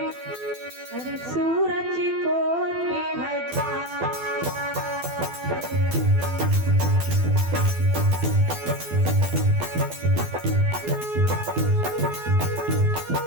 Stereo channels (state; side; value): late; left; 12 ms